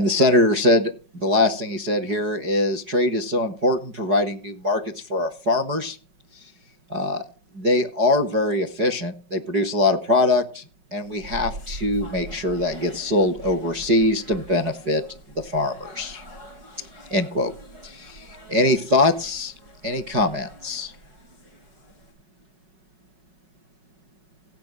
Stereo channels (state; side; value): late; left; 5.4 ms